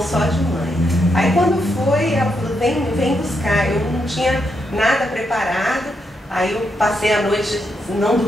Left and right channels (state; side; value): normal; both; correlation 0.81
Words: só de mãe. Aí quando foi, ela falou, vem buscar. Eu não tinha nada preparado, aí eu passei a noite, não